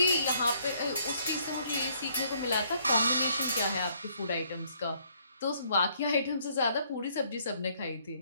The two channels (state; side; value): inverted; both; correlation -0.67